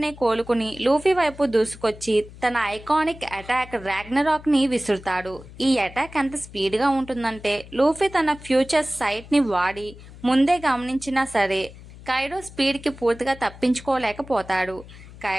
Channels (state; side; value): noise; left; hum, 18 dB below the sound